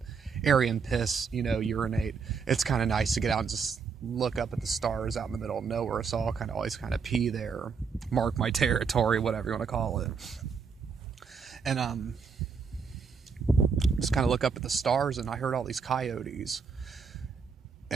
area and piss, urinate. It's kind of nice to get out and just look up at the stars out in the middle of nowhere, so I'll always pee there, mark my territory, whatever you want to call it. And just kind of look up at the stars, and I heard all these coyotes.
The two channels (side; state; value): left; quieter; 5.7 dB